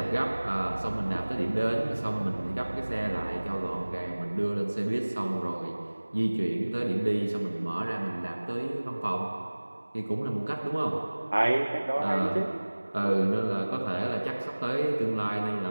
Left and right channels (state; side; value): inverted; both; correlation -1.00